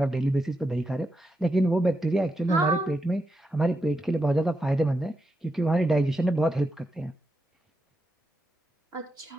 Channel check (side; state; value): both; normal; correlation 0.86